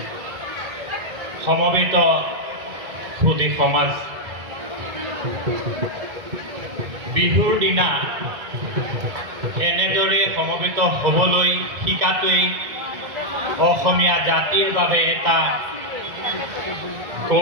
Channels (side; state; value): left; late; 1.8 ms